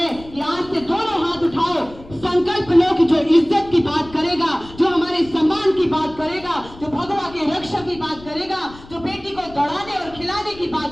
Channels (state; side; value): noise; left; rumble, 19 dB below the sound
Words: कि आज से दोनों हाथ उठाओ, संकल्प लो कि जो इज्जत की बात करेगा, जो हमारे सम्मान की बात करेगा, जो भगवा की रक्षा की बात करेगा, जो बेटी को दौड़ाने और खिलाने की